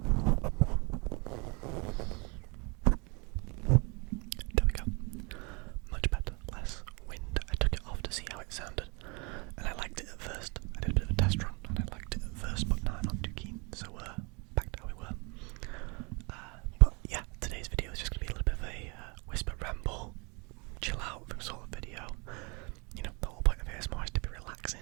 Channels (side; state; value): left; quieter; 30.5 dB